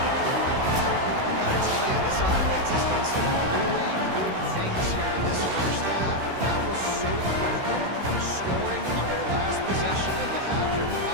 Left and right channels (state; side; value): late; left; 16 ms